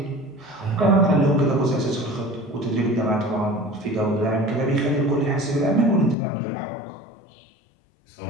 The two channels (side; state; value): right; drops out; at 6.2 s